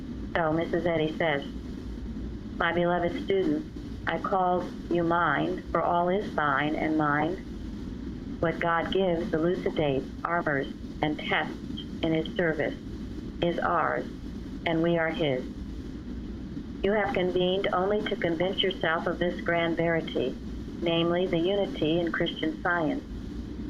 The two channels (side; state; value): both; identical; correlation 1.00